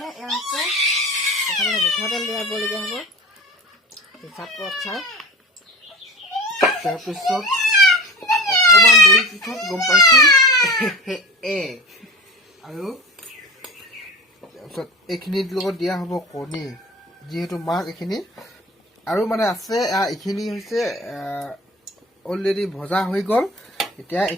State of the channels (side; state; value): both; normal; correlation 0.34